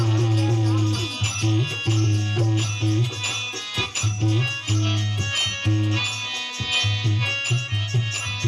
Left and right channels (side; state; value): both; identical; correlation 1.00